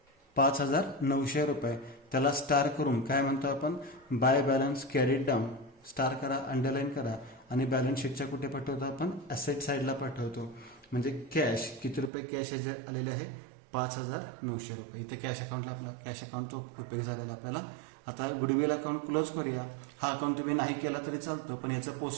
5,900 रुपये. त्याला स्टार करून काय म्हणतो आपण? By balance carried down. Star करा, अंडरलाईन करा आणि बॅलन्स शीटच्या कुठे पाठवतो आपण? ॲसेट साईडला पाठवतो. म्हणजे कॅश किती रुपये कॅश आलेले आहे? 5,900 रुपये. इथे कॅश अकाउंटला आपला कॅश अकाउंटचा उपयोग झालेला आपल्याला. आता गुडविल अकाउंट क्लोज करूया. हा अकाउंट तुम्ही नाही केला तरी चालतो, पण याचं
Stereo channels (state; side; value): drops out; left; at 12.1 s